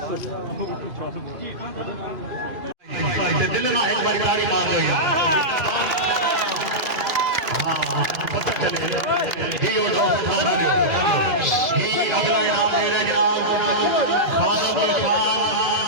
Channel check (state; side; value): late; left; 2.5 ms